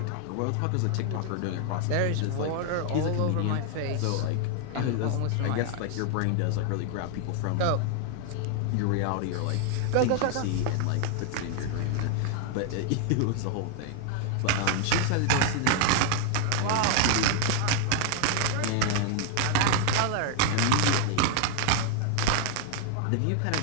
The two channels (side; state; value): both; different; correlation 0.00